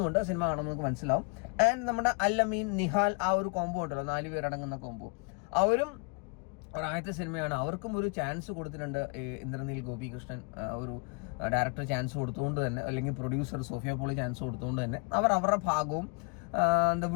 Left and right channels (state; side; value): quieter; right; 32.6 dB